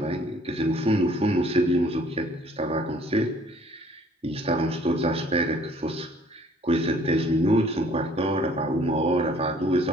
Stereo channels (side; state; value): both; normal; correlation 0.57